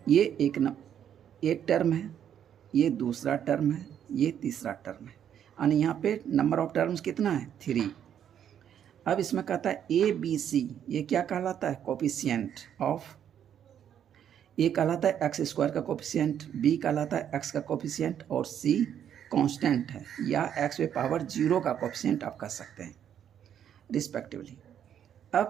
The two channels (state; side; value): quieter; left; 9.4 dB